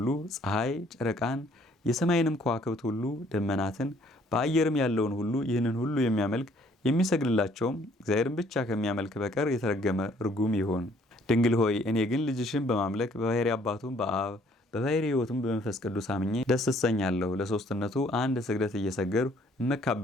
ፀሐይ፣ ጨረቃን፣ የሰማይንም ከዋክብት ሁሉ ደመናትን፣ በአየርም ያለውን ሁሉ ይህንን ሁሉ የሚያመልክ የሚሰግድላቸውም እግዚአብሔርን ብቻ ከሚያመልክ በቀር የተረገመ ርጉም ይሆን። ድንግል ሆይ እኔ ግን ልጅሽን በማምለክ በባሕርይ አባቱም በአብ በባሕርይ ሕይወቱም በመንፈስ ቅዱስ አምኜ ደስ እሰኛለሁ። ለሶስትነቱ አንድ ስግደት እየሰገድሁ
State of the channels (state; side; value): normal; both; correlation 0.61